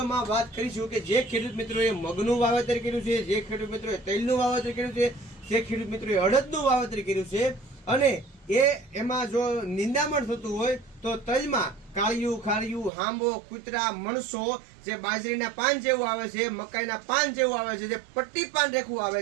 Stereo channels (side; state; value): left; drops out; at 12.9 s